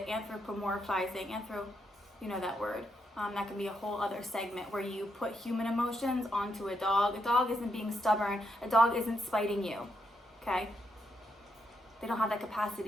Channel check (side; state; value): both; normal; correlation 0.80